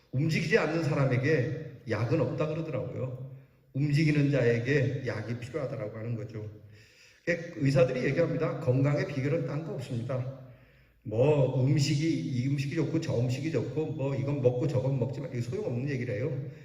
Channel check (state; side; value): identical; both; correlation 1.00